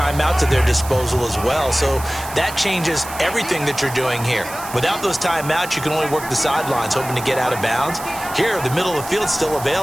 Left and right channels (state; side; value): noise; right; hiss, 13 dB below the sound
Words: at their disposal as well, so that changes everything that you're doing here. Without those timeouts, you can only work the sidelines, hoping to get out of bounds. Here, the middle of the field is still